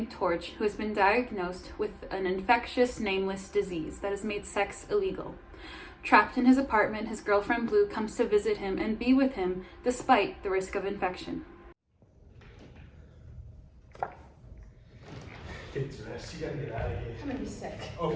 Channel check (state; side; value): identical; both; correlation 1.00